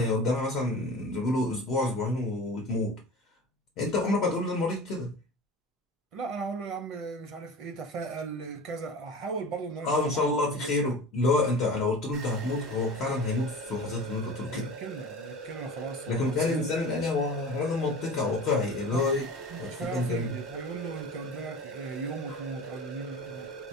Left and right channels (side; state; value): both; normal; correlation 0.35